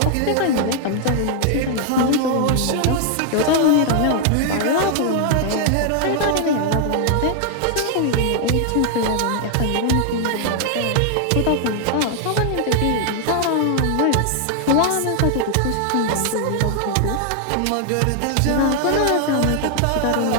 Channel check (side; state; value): both; different; correlation 0.00